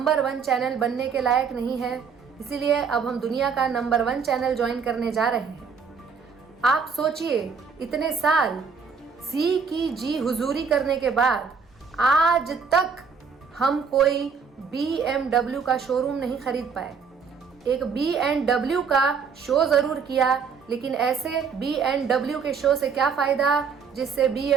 1 चैनल बनने के लायक नहीं है। इसीलिए अब हम दुनिया का नंबर 1 चैनल ज्वाइन करने जा रहे हैं। आप सोचिए, इतने साल सी की जी हुजूरी करने के बाद आज तक हम कोई BMW का शोरूम नहीं खरीद पाए। एक BMW का शो ज़रूर किया, लेकिन ऐसे BMW के शो से क्या फ़ायदा जिससे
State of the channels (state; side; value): quieter; left; 5.8 dB